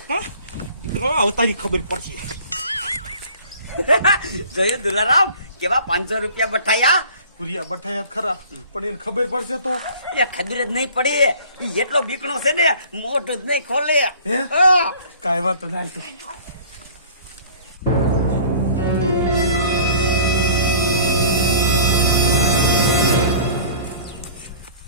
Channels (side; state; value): both; inverted; correlation -0.47